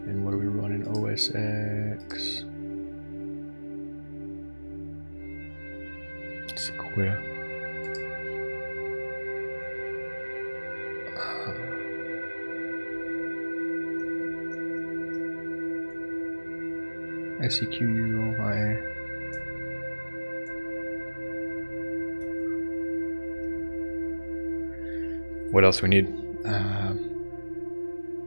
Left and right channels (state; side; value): inverted; both; correlation -1.00